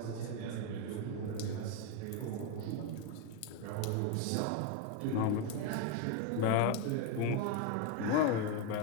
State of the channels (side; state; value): both; different; correlation 0.02